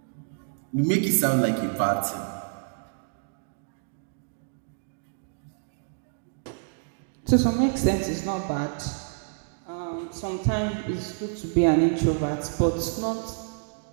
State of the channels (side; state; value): left; silent; digital silence